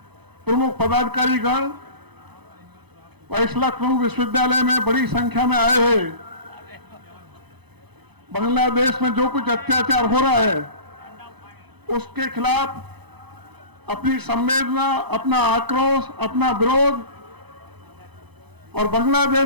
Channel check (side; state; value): left; late; 0.99 ms